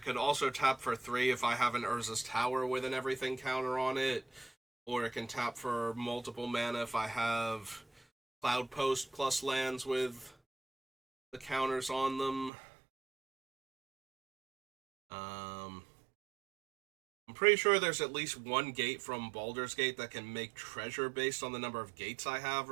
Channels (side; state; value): left; drops out; at 12.5 s